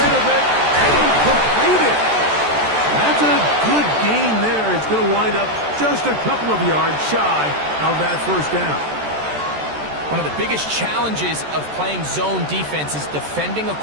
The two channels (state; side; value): late; left; 14 ms